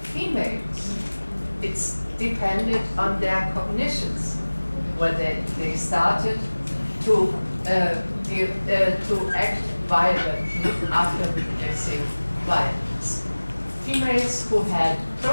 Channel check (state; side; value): inverted; both; correlation -1.00